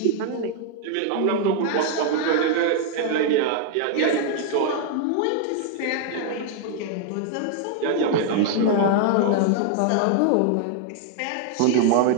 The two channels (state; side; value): different; both; correlation 0.00